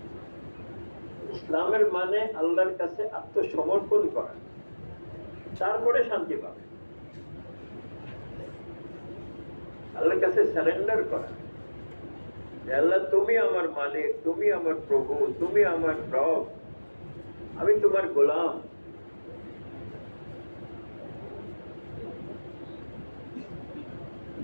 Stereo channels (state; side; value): inverted; both; correlation -1.00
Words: ইসলামের মানে আল্লাহর কাছে আত্মসমর্পণ করা, তারপরে শান্তি পাবে। আল্লাহর কাছে সারেন্ডার করা, আল্লাহ তুমি আমার মালিক, তুমি আমার প্রভু, তুমি আমার রব, আমি তোমার গোলাম।